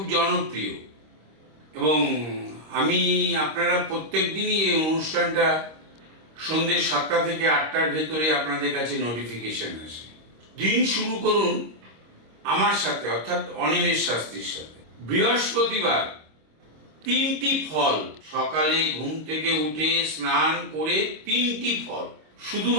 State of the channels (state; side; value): late; left; 26 ms